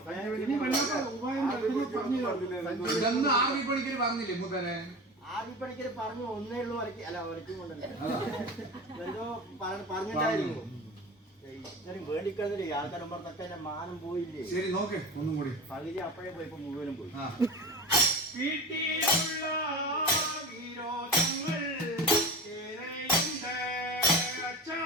ഇതൊന്നും ആർമി പണിക്കര് പറഞ്ഞില്ലേ മൂത്തനെ? ആദ്യപ്പണിക്കര് പറഞ്ഞു ഒന്നേ ഉള്ളൂ വരയ്ക്ക് അല്ല വരയ്ക്കും കൊണ്ടല്ലേ എന്തോ പറഞ്ഞിട്ടായിരുന്നു. ഇത്രയും വേണ്ടിക്കുന്നതില്ലേ ആൾക്കാരമ്പുറത്തൊക്കെ എന്റെ മാനം പോയില്ലേ. ശരി നോക്ക് ഒന്നും കൂടി. പകുതി അപ്പോഴേ പോയി ഇപ്പൊ മുഴുവനും പോയി. വീട്ടിലുള്ള വിരോധങ്ങൾ ഏറെയുണ്ട് അച്ഛാ.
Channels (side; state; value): both; normal; correlation 0.31